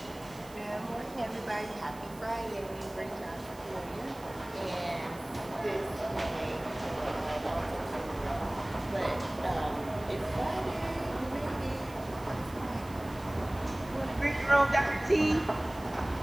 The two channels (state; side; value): noise; right; hiss, 21 dB below the sound